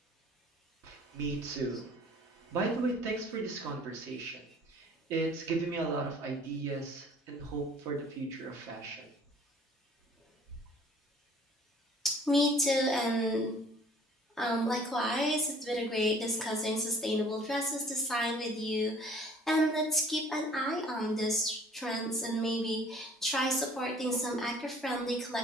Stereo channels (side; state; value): both; normal; correlation 0.53